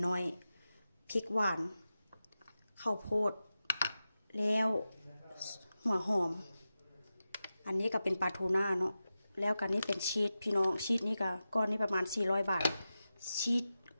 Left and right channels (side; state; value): both; inverted; correlation -0.93